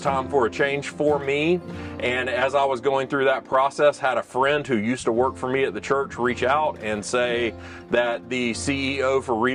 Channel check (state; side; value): identical; both; correlation 1.00